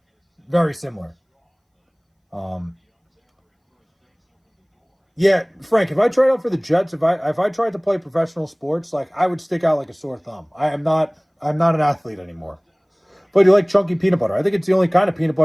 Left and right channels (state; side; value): identical; both; correlation 1.00